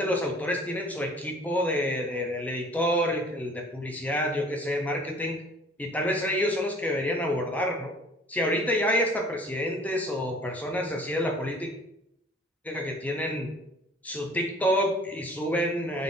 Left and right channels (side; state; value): both; normal; correlation 0.51